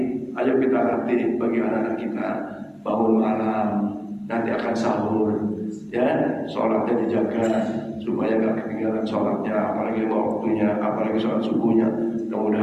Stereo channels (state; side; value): identical; both; correlation 1.00